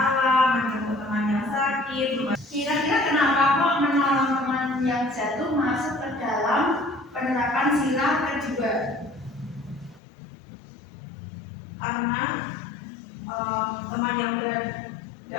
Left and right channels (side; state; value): right; drops out; at 10.0 s